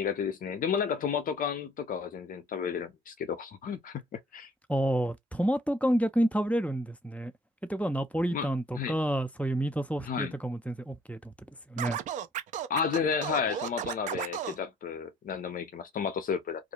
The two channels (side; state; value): both; normal; correlation 0.58